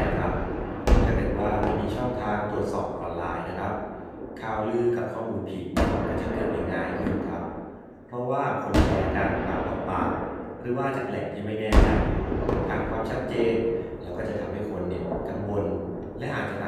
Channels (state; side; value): identical; both; correlation 1.00